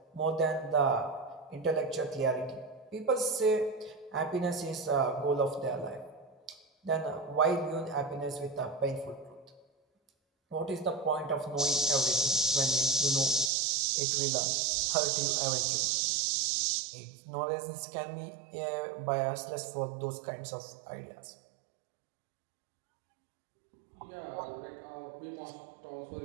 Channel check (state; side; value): drops out; left; at 13.5 s